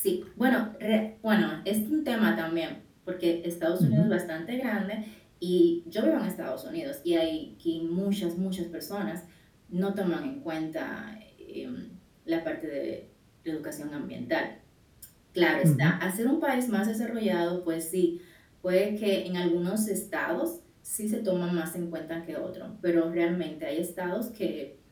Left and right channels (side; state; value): both; identical; correlation 1.00